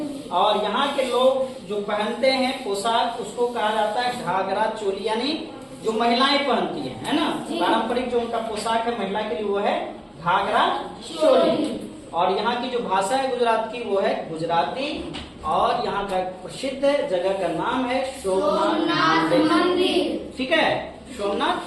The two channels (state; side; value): identical; both; correlation 1.00